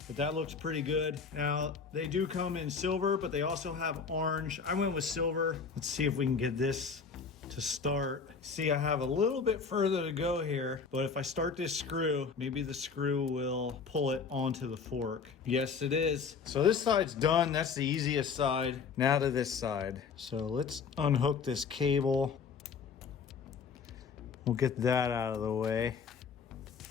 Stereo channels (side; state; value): right; quieter; 5.6 dB